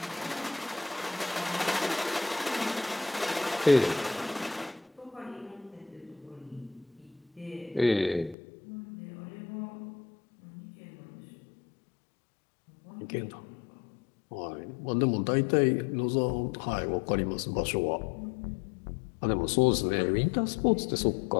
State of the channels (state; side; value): drops out; right; at 8.3 s